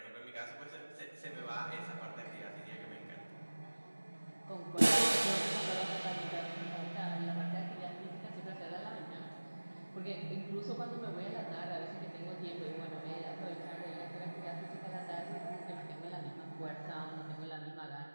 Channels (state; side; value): inverted; both; correlation -1.00